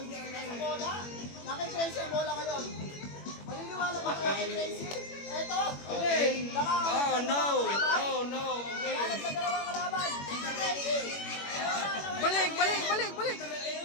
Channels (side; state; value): right; late; 21 ms